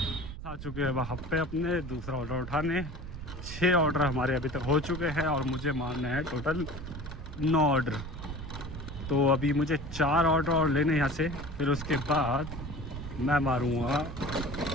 आ चुके हैं वहाँ पे अपने दूसरा ऑर्डर उठाने। 6 ऑर्डर हमारे अभी तक हो चुके हैं और मुझे मारना है टोटल 9 ऑर्डर। तो अभी मुझे 4 ऑर्डर और लेने यहाँ से, फिर उसके बाद मैं मारूँगा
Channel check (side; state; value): right; noise; rumble, 10 dB below the sound